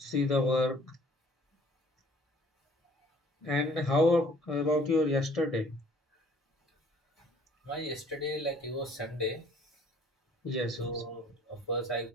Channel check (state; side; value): normal; both; correlation 0.56